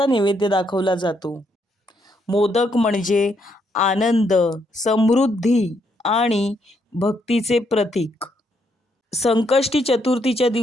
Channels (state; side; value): normal; both; correlation 0.75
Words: नैवेद्य दाखवला जातो. मोदक म्हणजे आनंद, समृद्धी आणि भक्तीचे प्रतीक. संकष्टी चतुर्थीच्या